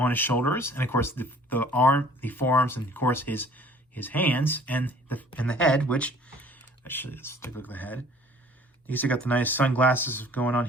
his shoulders, and of course the forearms, and of course his hands and the head. Which actually, let's take a look at the head. He's got the nice sunglasses going on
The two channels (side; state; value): both; normal; correlation 0.53